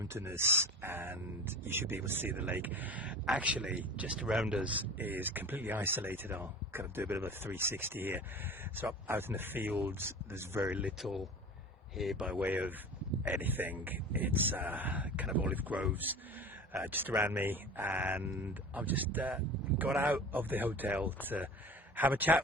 and you should be able to see the lake. Actually, just around us is completely isolated. I'll kind of do a bit of a 360 here. So out in the fields, there's very little here by way of anything. It's kind of olive groves just around me, and I've just got out of the hotel to have a chat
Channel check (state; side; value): normal; both; correlation 0.36